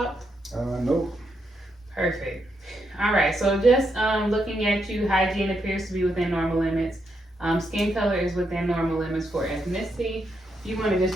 Nope. Perfect. All right, so just looking at you, hygiene appears to be within normal limits. Skin color is within normal limits for ethnicity. If you want to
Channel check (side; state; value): both; normal; correlation 0.80